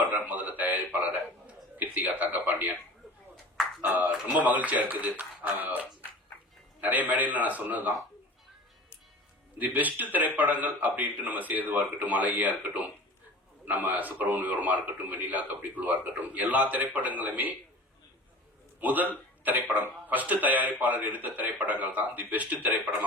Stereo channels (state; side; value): normal; both; correlation 0.38